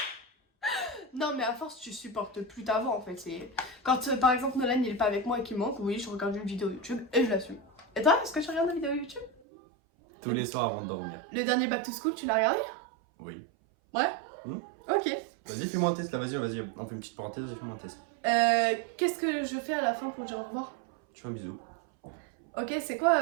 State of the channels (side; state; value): left; drops out; at 9.3 s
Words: Non, mais à force, tu supportes plus ta voix, en fait. Quand, par exemple, Nolan, il est pas avec moi et qu'il manque, oui, je regarde une vidéo YouTube et je l'assume. Et toi, est-ce que tu regardes une vidéo YouTube? Tous les soirs avant de dormir. Le dernier Back to School, tu l'as regardé? Oui. Ouais. Ok. Vas-y, fais-moi un test, là, vas-y, on fait une petite parenthèse, vas-y, fais-moi un test. Qu'est-ce que je fais à la fin pour dire au revoir? Tu fais un bisou. Ok, c'est